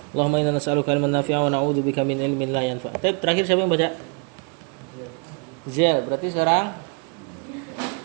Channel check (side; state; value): left; quieter; 35.6 dB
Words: Allahumma inna nas'aluka ilman nafi'an wa na'udzubika min ilmin la yanfa'. Terakhir siapa yang baca? Zia, berarti sekarang